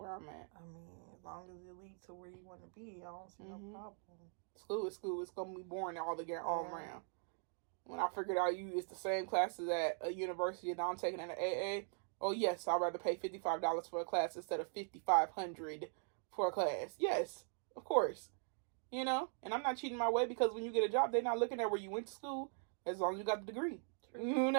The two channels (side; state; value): left; silent; 50 dB below the other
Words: I'm at. I mean, as long as it leads to where you want to be, I don't see no problem. School is school. It's gonna be boring all around. When I figured out it's the same classes at a university that I'm taking at an AA. Oh yes, I'd rather pay $55 for a class instead of $5,500 for a class. Yes, of course. You know, and I'm not cheating my way, because when you get a job, they're not looking at where you went to school, as long as you got the degree. True. You